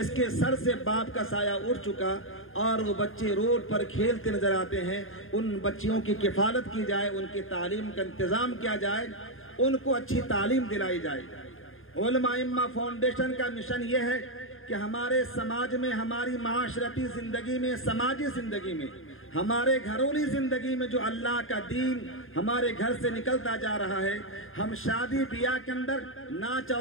کے سر سے باپ کا سایہ اٹھ چکا اور وہ بچے روڈ پر کھیلتے نظر آتے ہیں، ان بچیوں کی کفالت کی جائے، ان کی تعلیم کا انتظام کیا جائے، ان کو اچھی تعلیم دلائی جائے. علماء ائمہ فاؤنڈیشن کا مشن یہ ہے کہ ہمارے سماج میں، ہماری معاشرتی زندگی میں، سماجی زندگی میں، ہمارے گھرولی زندگی میں جو اللہ کا دین ہمارے گھر سے نکلتا جا رہا ہے، ہم شادی بیاہ کے اندر ناچ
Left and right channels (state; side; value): late; right; 0.59 ms